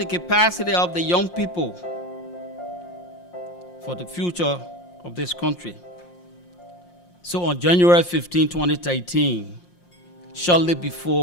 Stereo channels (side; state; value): right; late; 5.7 ms